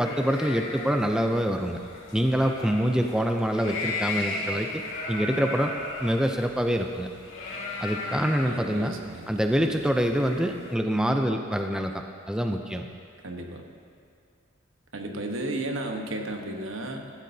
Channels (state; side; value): normal; both; correlation 0.80